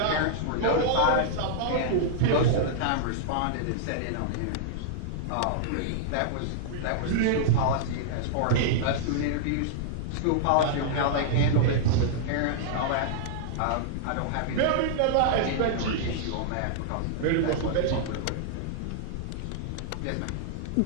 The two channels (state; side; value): different; both; correlation -0.01